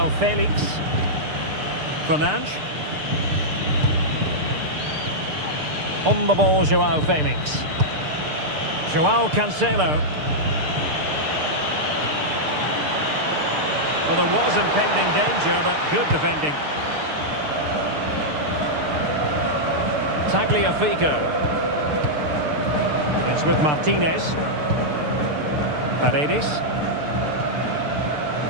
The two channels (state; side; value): late; left; 6.7 ms